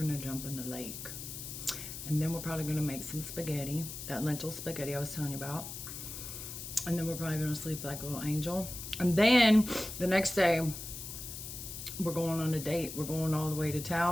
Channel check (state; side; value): noise; left; hiss, 9 dB below the sound